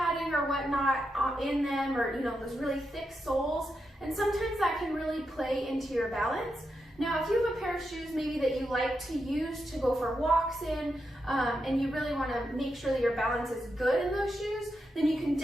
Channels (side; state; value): both; normal; correlation 0.85